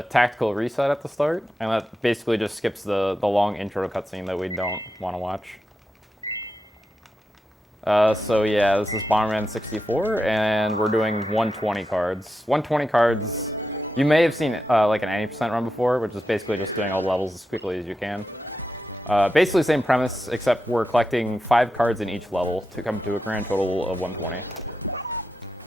tactical reset at the start, and that basically just skips the long intro cutscene that we don't want to watch. So yeah, this is Bomberman 64, and we're doing 120 cards. 120 cards, you may have seen like an 80% run before, which is basically just doing all levels as quickly as you can. Basically same premise, except we're collecting 5 cards in each level to come to a grand total of 120.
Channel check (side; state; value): both; normal; correlation 0.88